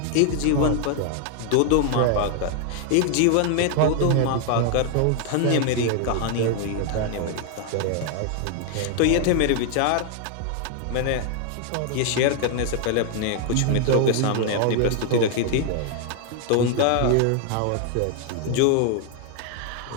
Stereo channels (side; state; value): both; different; correlation 0.00